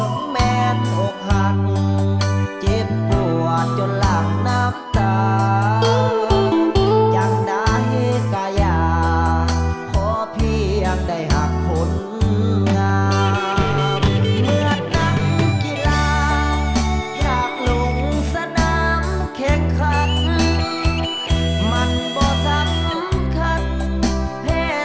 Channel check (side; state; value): both; identical; correlation 1.00